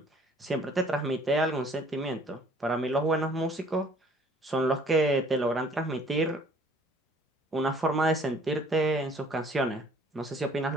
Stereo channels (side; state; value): both; normal; correlation 0.56